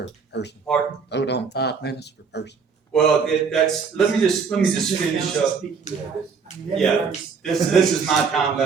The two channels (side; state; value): left; quieter; 5.6 dB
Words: person. Pardon? Vote on 5 minutes per person. Well, let me just finish up. Yeah, this is my time,